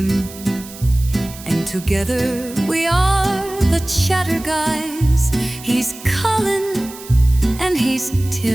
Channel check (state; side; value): noise; right; hiss, 16 dB below the sound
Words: And together we are the chatter guys. He's Colin and he's